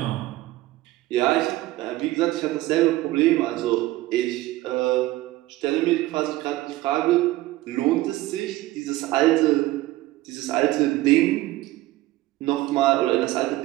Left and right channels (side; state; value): left; quieter; 17.3 dB